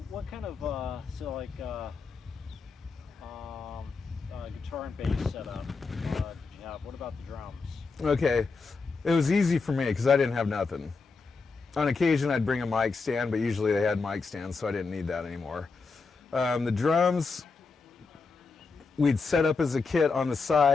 what kind of guitar and bass setup did you have? What about the drums? Okay, it was easy for me because I didn't have nothing. On occasion, I'd bring a mic stand, but usually they had mic stands, so I didn't need that anymore. The drums, we'd set up as a kit on the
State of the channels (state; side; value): quieter; right; 4.5 dB